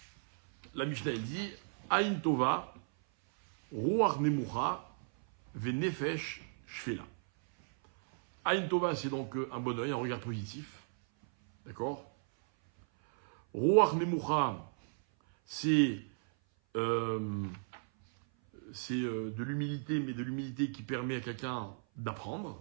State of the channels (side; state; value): left; silent; 55 dB below the other